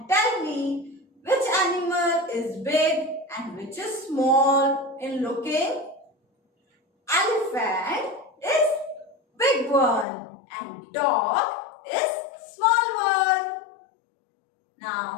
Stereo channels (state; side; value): drops out; right; at 10.1 s